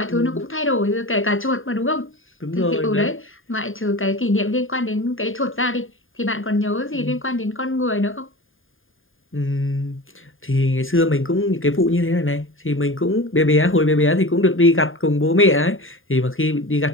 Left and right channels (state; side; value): late; right; 0.59 ms